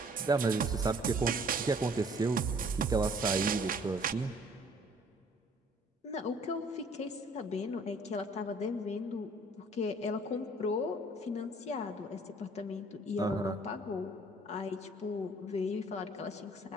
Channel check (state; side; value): normal; both; correlation 0.57